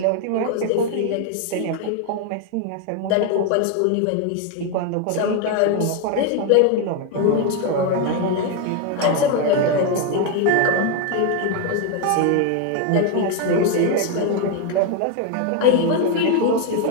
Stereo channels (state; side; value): different; both; correlation 0.01